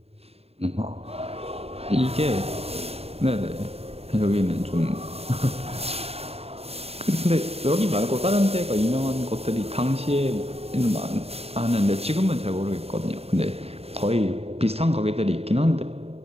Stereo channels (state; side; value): late; left; 0.29 ms